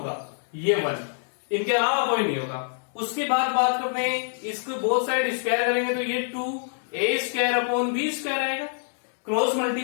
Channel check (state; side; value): silent; right; digital silence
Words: ये 1, इनके अलावा कोई नहीं होगा। उसके बाद बात करते हैं, इसको बोथ साइड स्क्वायर करेंगे तो ये 2a² आएगा। क्रॉस